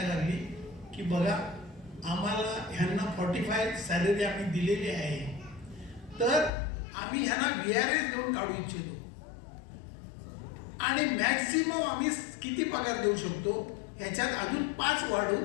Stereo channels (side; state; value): right; drops out; at 6.5 s